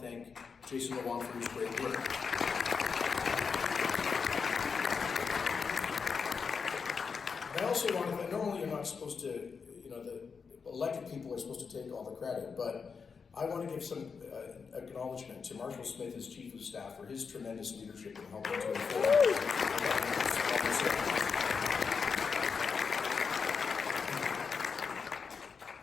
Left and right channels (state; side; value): quieter; right; 5.6 dB